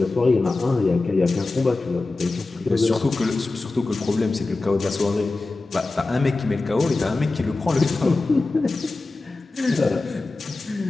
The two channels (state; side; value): quieter; right; 3.4 dB